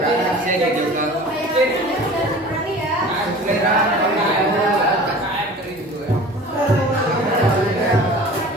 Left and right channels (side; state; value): both; normal; correlation 0.41